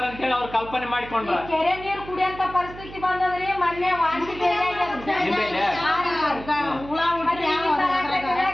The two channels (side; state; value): right; noise; hum, 15 dB below the sound